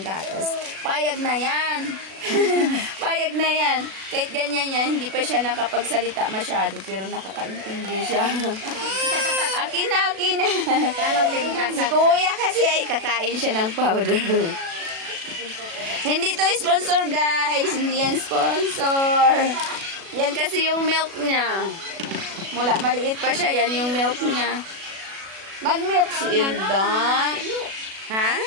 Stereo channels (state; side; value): late; left; 36 ms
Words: gatas. Payag na yan. Payag na yan. Kahit ganyan yan, hindi pa siya nakapagsalita masyado, pero nakakaintindi siya. Akin na. Si kuya kasi ay kakain siya ng powder. Hindi to sponsor, guys. Hindi yan sponsor. Yan kasi yung milk niya. Mula maliit pa siya, yan yung milk niya. Mag-milk si Ilda. Ha?